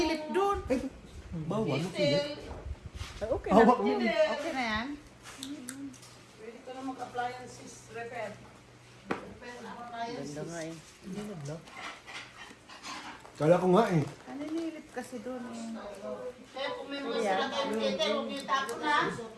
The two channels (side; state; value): both; identical; correlation 1.00